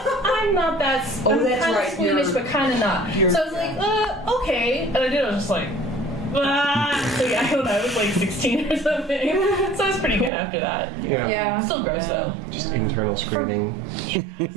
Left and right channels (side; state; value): left; drops out; at 10.3 s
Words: I'm not that. I'm that's kind right. of squeamish, but kind of not. So I was like, okay, and I was just like. So yeah, I don't know, I was like 16 or something. So I was pretty good after that. Yeah. Still gross though. Just internal screaming.